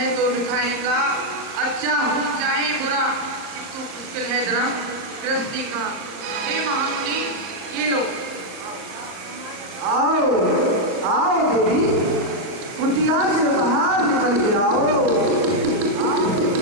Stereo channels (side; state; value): left; late; 38 ms